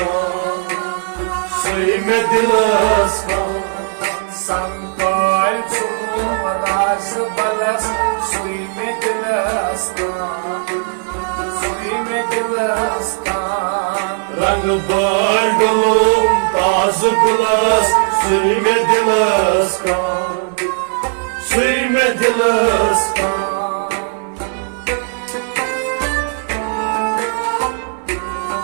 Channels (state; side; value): silent; left; 56 dB below the other